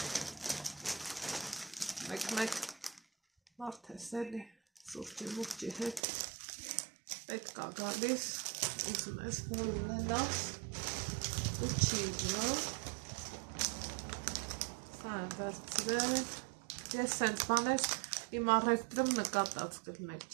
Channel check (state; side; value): drops out; left; at 6.0 s